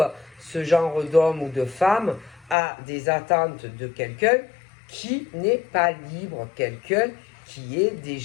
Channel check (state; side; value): drops out; right; at 2.6 s